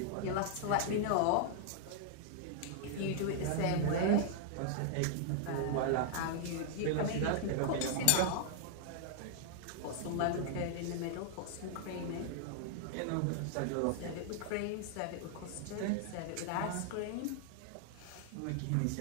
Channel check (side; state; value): both; different; correlation 0.00